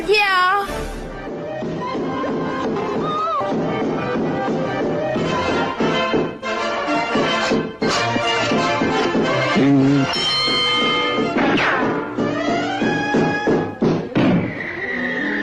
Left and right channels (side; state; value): both; identical; correlation 1.00